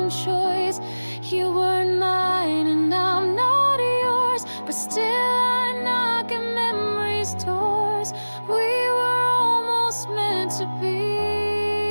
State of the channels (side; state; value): both; inverted; correlation -1.00